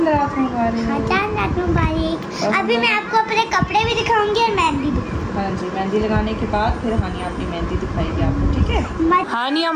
रात मुबारक। हाँ, चांद रात मुबारक। अभी मैं आपको अपने कपड़े भी दिखाऊंगी और मेहंदी भी। हाँ जी, मेहंदी लगाने के बाद फिर हानिया अपनी मेहंदी दिखाएगी आपको, ठीक है? हानिया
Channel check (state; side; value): identical; both; correlation 1.00